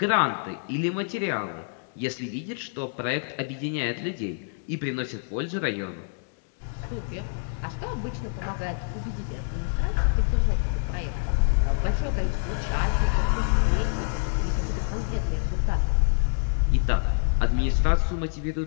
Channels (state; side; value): silent; right; digital silence